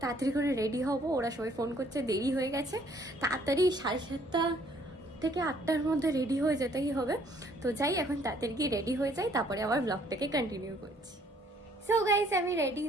তাড়াতাড়ি করে রেডি হব। ওরা সবাই ফোন করছে, দেরি হয়ে গেছে, তাড়াতাড়ি 7:30 থেকে 8টার মধ্যে রেডি হয়ে যেতেই হবে। তো যাই, এখন তাড়াতাড়ি গিয়ে রেডি হয়ে যাই, তারপরে আবার ব্লগটাকে কন্টিনিউ করছি। সো গাইস, আমি রেডি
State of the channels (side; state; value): both; normal; correlation 0.62